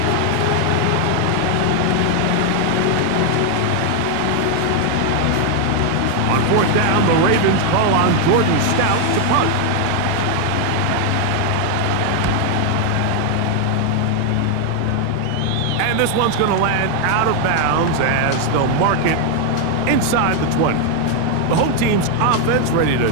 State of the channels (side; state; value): both; different; correlation 0.01